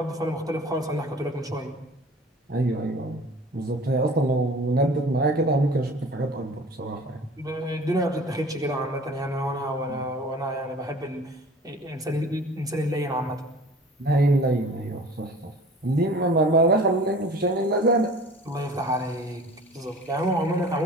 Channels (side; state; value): both; normal; correlation 0.44